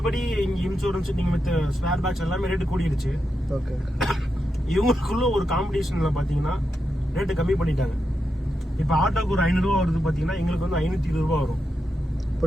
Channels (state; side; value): normal; both; correlation 0.86